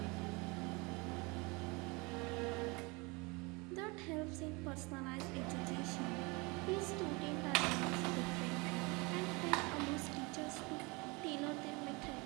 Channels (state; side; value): quieter; left; 27.1 dB